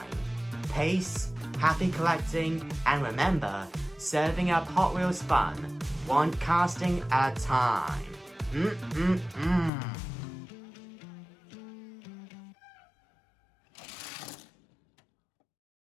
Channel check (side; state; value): right; drops out; at 9.7 s